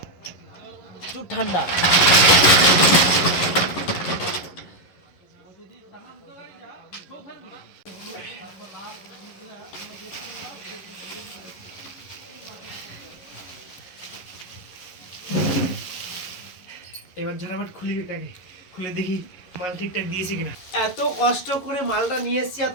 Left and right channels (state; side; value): late; right; 11 ms